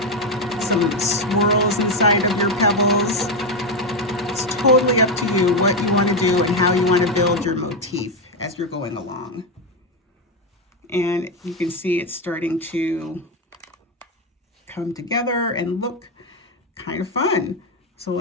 some swirls inside of your pebbles. It's totally up to you what you want to do and how you want to build your motif as you're going along. And you can see it's starting to come together and look kind of fun. So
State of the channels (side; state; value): both; normal; correlation 0.08